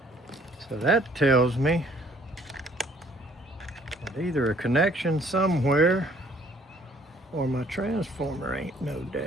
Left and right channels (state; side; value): normal; both; correlation 0.60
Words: So that tells me that either a connection somewhere or my transformer ain't no